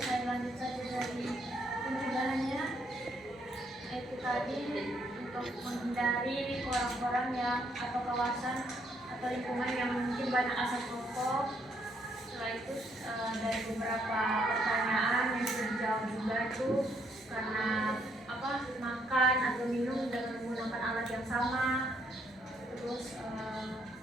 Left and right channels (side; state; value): both; normal; correlation 0.72